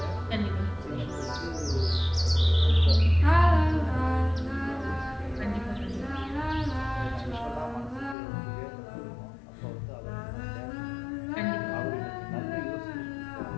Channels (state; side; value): drops out; right; at 8.2 s